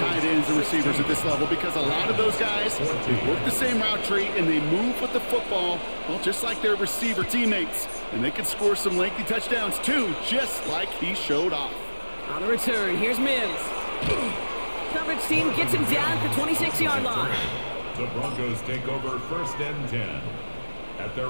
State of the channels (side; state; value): both; inverted; correlation -1.00